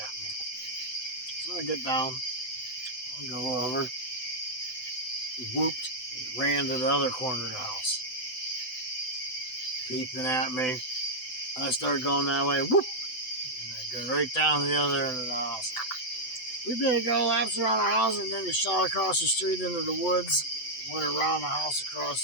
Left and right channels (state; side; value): late; right; 7.9 ms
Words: me. So I get down, I go over, whooped, ran to the other corner of the house, peeping at me. I started going that way, whoop, and I go right down the other end of the house. We did go laps around the house and then we shot across the street into the woods, went around the house